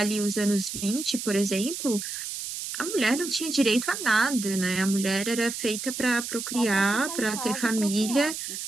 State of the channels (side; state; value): right; noise; hiss, 6 dB below the sound